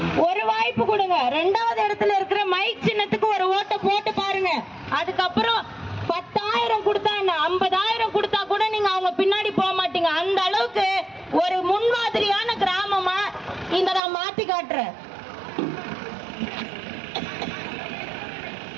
ஒரு வாய்ப்பு கொடுங்க. 2வது இடத்துல இருக்கிற மைக் சின்னத்துக்கு ஒரு ஓட்டை போட்டு பாருங்க. அதுக்கப்புறம் 10,000 கொடுத்தா என்ன, 50,000 கொடுத்தா கூட நீங்க அவங்க பின்னாடி போக மாட்டீங்க. அந்த அளவுக்கு ஒரு முன்மாதிரியான கிராமமா இந்த நான் மாத்தி காட்டுறேன்.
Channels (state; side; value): drops out; left; at 14.0 s